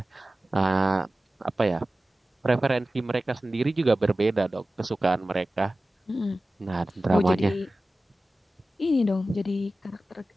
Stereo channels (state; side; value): normal; both; correlation 0.96